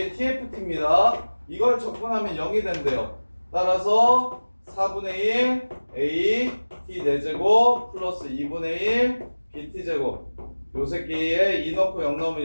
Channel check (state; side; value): inverted; both; correlation -1.00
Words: tft입니다. 이걸 적분하면 0이 된대요. 따라서 4분의 1 a t 4제곱 플러스 2분의 1 bt 제곱 요 새끼에 2 넣고 0 넣으면